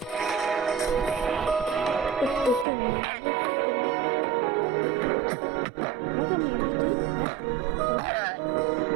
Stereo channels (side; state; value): left; drops out; at 2.7 s